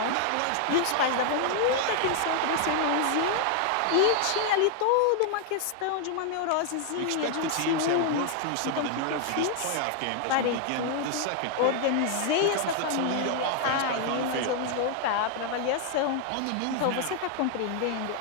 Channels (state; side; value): different; both; correlation 0.00